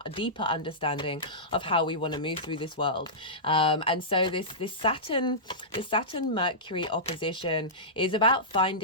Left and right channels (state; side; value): normal; both; correlation -0.16